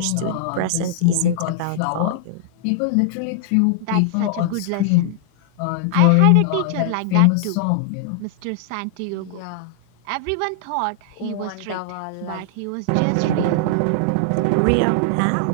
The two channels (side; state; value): both; different; correlation -0.01